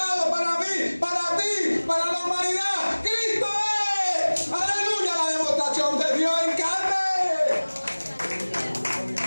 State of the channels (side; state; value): both; inverted; correlation -1.00